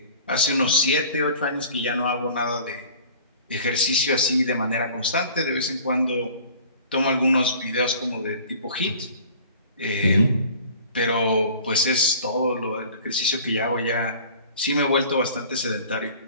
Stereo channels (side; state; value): both; inverted; correlation -0.47